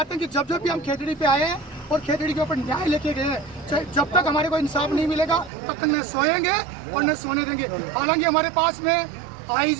हैं कि जब भी हम खेतड़ी पे आए हैं और खेतड़ी के ऊपर न्याय लेके गए हैं, जब तक हमारे को इंसाफ नहीं मिलेगा तब तक न सोएंगे और न सोने देंगे। हालांकि हमारे पास में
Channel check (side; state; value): left; drops out; at 5.5 s